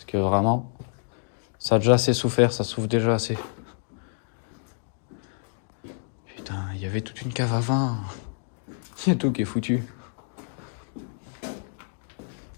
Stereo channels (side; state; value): right; silent; 60 dB below the other